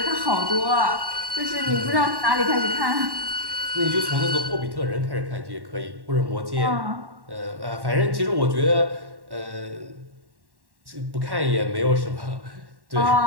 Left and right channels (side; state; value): left; late; 1.1 ms